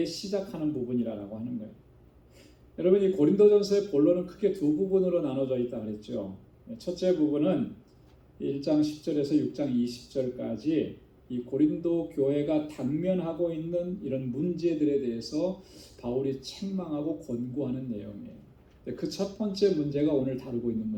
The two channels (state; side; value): identical; both; correlation 1.00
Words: 시작하는 부분이라고 하는 거예요. 여러분, 이 고린도전서의 본론은 크게 두 부분으로 나눠져 있다 그랬죠. 첫째 부분은 1장 10절에서 6장 20절까지 이 고린도 교회가 당면하고 있는 이런 문제들에 대해서 바울이 책망하고 권고하는 내용이에요. 그 첫 번째 문제가 오늘 다루고 있는